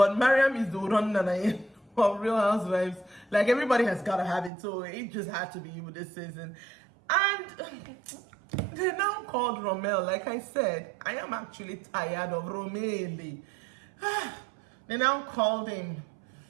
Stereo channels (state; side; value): drops out; left; at 4.5 s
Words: Mariam is the run of Real Housewives. Like, everybody has got to have it, so it just had to be you this season. And they now called Rommel. Like I said, I am actually tired of Romeli. They now called him.